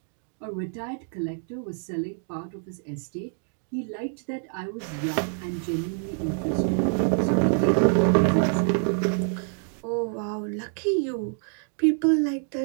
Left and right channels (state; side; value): silent; left; 60 dB below the other